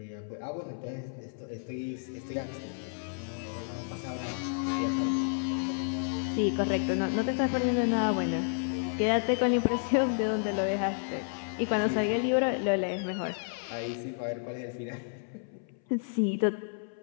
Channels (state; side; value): silent; right; 57 dB below the other